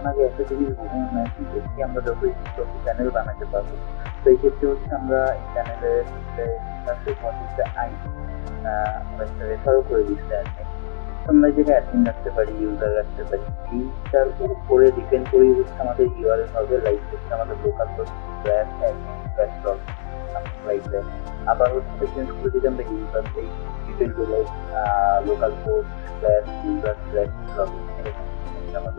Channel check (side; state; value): right; silent; digital silence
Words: আগে একটা জিনিস মেনশন করছি, আমরা যত ইচ্ছে তত প্যানেল বানাতে পারবো। তো এই ক্ষেত্রে হচ্ছে আমরা এই প্যানেলের এই জায়গায় লেখা আছে হোয়াট ইজ দ্য আইডি, ওরা একটা রেফারও করে দিচ্ছে অ্যাডমিন। তো আমরা এই জায়গায় অ্যাডমিন রাখতে পারি, ইউজার রাখতে পারি, এইটার উপরে ডিপেন্ড করেই হচ্ছে আমাদের ইউআরএল হবে, লাইক হচ্ছে আমাদের local host /admin/login, something like that. আবার হচ্ছে এটা চেঞ্জ করে যদি আমরা ইউজার দেই, it will be like local host /user/login, এরকম কিছু একটা